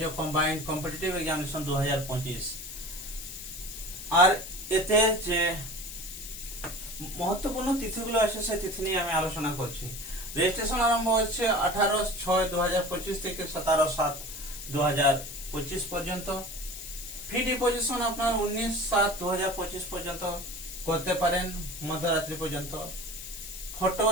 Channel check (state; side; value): noise; left; hiss, 10 dB below the sound